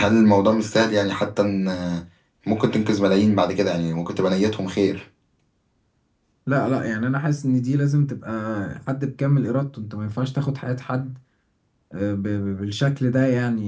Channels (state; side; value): identical; both; correlation 1.00